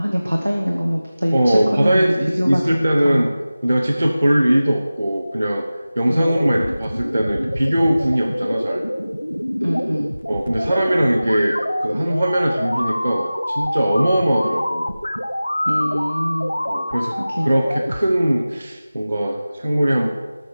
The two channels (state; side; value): inverted; both; correlation -0.97